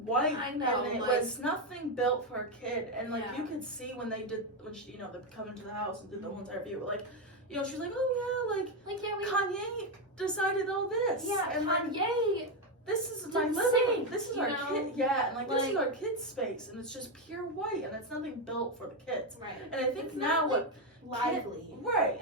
I know. And it was nothing built for a kid. And like Yeah. you could see when she, you know, they come into the house and did the whole entire view. Like, you know, she's like, oh yeah, Kanye decided all this. Yeah, and Kanye. This is my living room. This is our kid. Yeah, and like this is like- our kids' space, and it's just pure white, and it's nothing built for the kids. Right. And I think It's now not, lively. Right.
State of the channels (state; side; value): normal; both; correlation 0.07